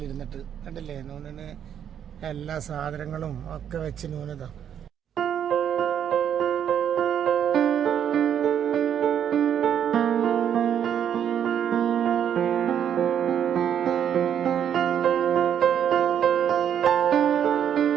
കണ്ടില്ലേ, നൂനിന് എല്ലാ സാധനങ്ങളും ഒക്കെ വെച്ച് നൂനതാ.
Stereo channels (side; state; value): left; quieter; 9.1 dB